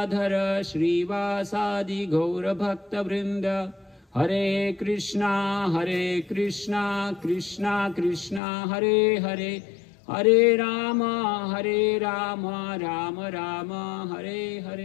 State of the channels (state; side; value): drops out; right; at 8.4 s